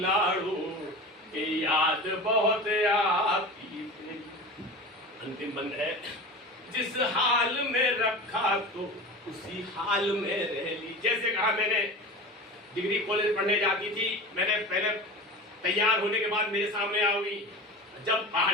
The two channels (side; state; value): both; normal; correlation 0.32